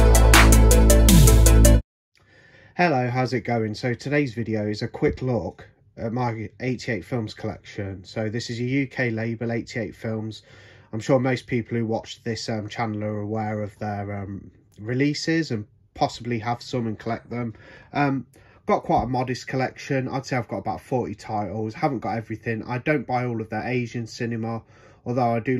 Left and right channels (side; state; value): both; identical; correlation 1.00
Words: how's it going? So today's video is a quick look at my 88 films collection. So this is a UK label, 88 films. I'm sure most people who watch this channel are aware of their releases and possibly have some and collect them. Got quite a modest collection. I'd say I've got about 40 titles. Haven't got everything. I don't buy all of their Asian cinema, although I do